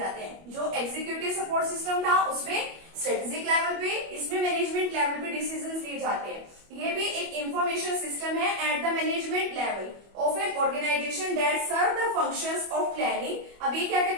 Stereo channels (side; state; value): left; late; 25 ms